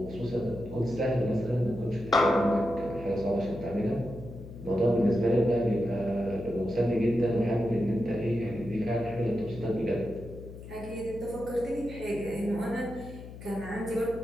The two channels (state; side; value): noise; left; hum, 14 dB below the sound